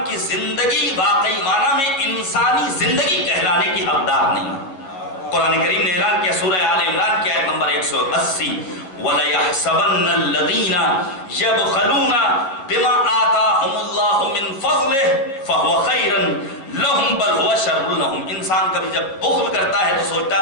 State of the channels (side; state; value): right; late; 11 ms